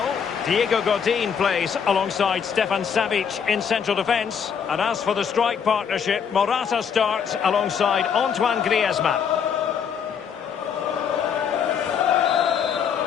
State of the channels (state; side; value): quieter; right; 7.2 dB